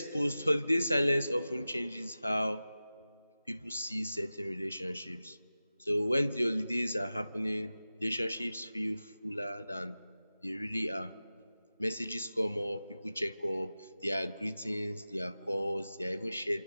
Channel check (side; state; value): both; inverted; correlation -0.95